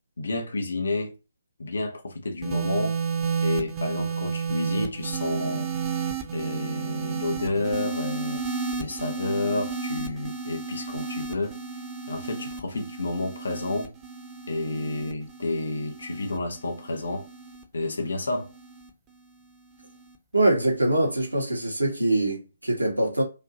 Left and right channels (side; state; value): both; inverted; correlation -0.76